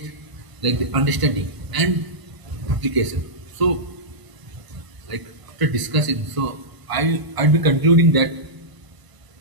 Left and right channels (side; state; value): left; late; 1.0 ms